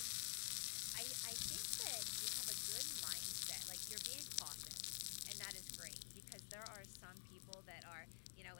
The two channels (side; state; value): right; silent; digital silence